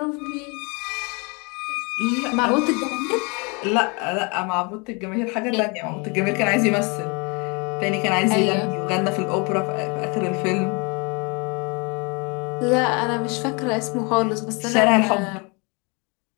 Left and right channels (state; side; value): quieter; right; 30.7 dB